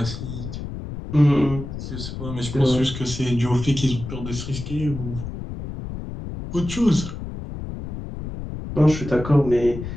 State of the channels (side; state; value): left; noise; rumble, 8 dB below the sound